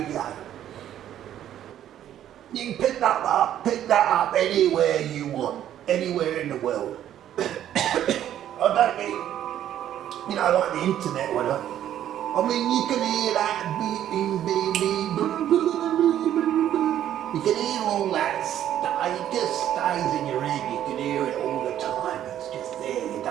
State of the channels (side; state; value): left; quieter; 11.2 dB